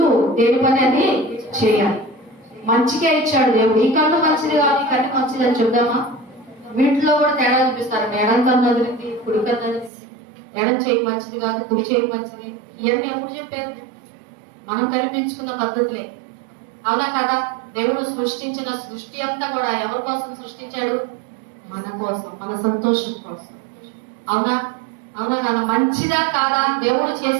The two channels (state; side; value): drops out; left; at 9.9 s